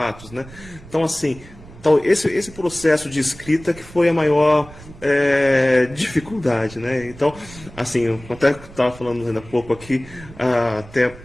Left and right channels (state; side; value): noise; right; rumble, 19 dB below the sound